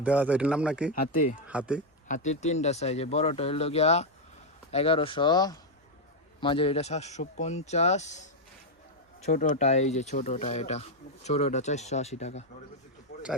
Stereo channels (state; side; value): normal; both; correlation 0.01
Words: দেওয়া আছে এটার নাম নাকি? হাতে হাতি? হাতির 3টা সাইজ। বড়টা হইলো গিয়া 1100, মাঝের এটা 750, ছোটটা এই যে ছোটটা, এটা ছোটটা 480 টাকা।